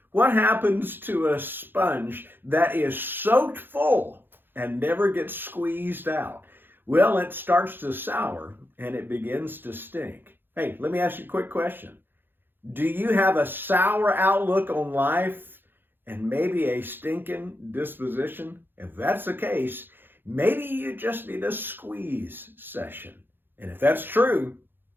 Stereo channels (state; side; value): late; left; 0.099 ms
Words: What happens to a sponge that is soaked full and never gets squeezed out? Well, it starts to sour and it begins to stink. Hey, let me ask you a quick question. Do you have a sour outlook on life and maybe a stinking disposition? If that's the case, maybe you just need a squeeze session. And if that's true,